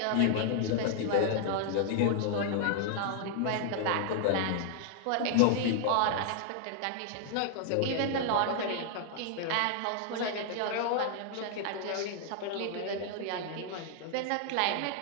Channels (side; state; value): both; different; correlation 0.00